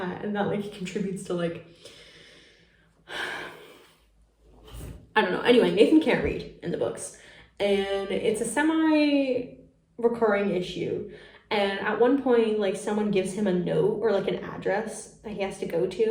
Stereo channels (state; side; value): identical; both; correlation 1.00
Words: and that like contributes to like, I don't know. Anyway, Nathan can't read in the books, and it's a semi-recurring issue. And at one point, like, someone gives him a note or like an address that he has to go